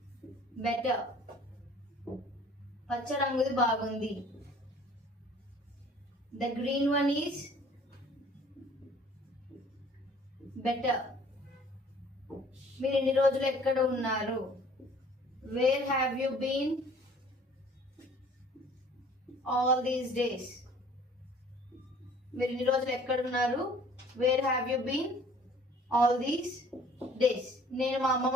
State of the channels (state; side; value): normal; both; correlation 0.53